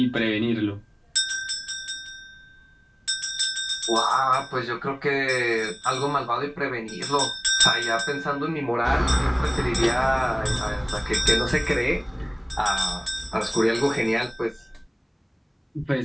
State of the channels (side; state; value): both; identical; correlation 1.00